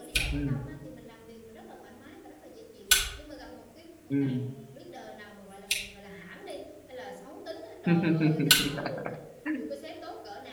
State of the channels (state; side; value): identical; both; correlation 1.00